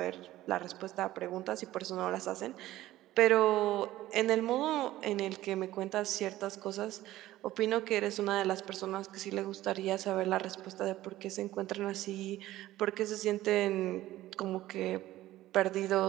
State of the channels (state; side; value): quieter; left; 15.3 dB